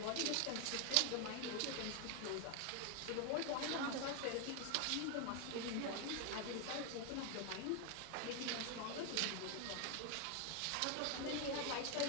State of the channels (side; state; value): both; different; correlation 0.01